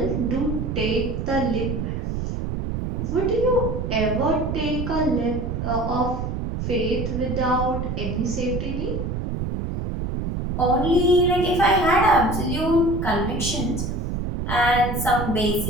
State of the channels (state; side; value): noise; right; rumble, 3 dB below the sound